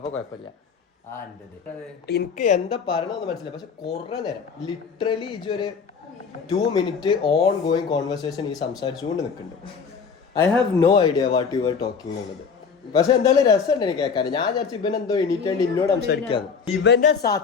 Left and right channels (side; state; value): right; quieter; 5.8 dB